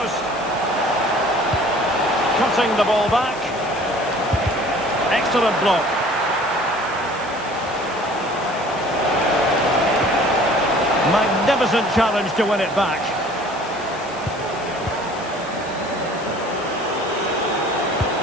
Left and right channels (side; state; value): left; noise; hiss, 19 dB below the sound